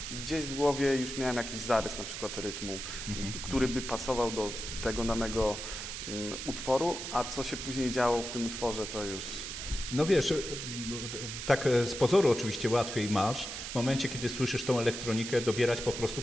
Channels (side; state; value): right; noise; hiss, 7 dB below the sound